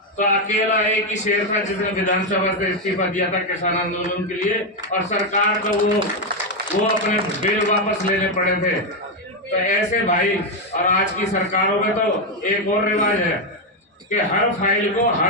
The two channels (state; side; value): normal; both; correlation 0.05